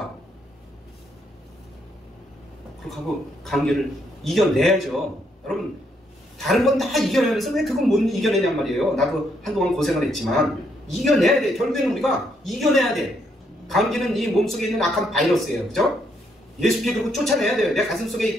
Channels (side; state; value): both; normal; correlation 0.74